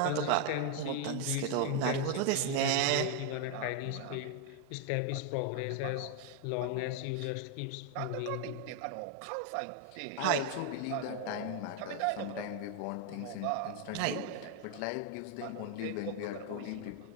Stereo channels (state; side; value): different; both; correlation 0.01